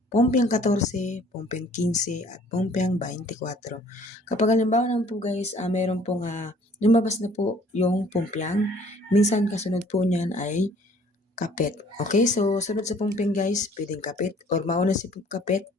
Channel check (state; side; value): normal; both; correlation 0.56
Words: pumpyang 14, pumpyang 15, at pumpyang 24. Kapag halimbawa naman po guys, meron pong lumabas na po yung pumpyang, minsan kasunod po niyan ay kapit. Okay, so sunod sa pumpyang guys, pwedeng kapit, or mauna si kapit,